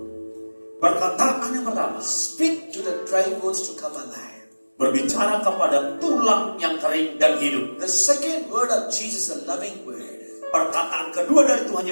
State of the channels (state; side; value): inverted; both; correlation -1.00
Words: Perkataan yang pertama, speak to the dry bones to come alive. berbicara kepada tulang yang kering dan hidup. The second word of Jesus, a loving word. Perkataan kedua dari Tuhan